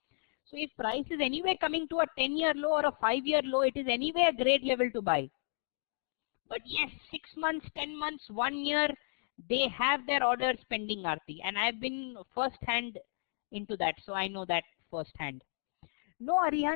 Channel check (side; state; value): right; silent; digital silence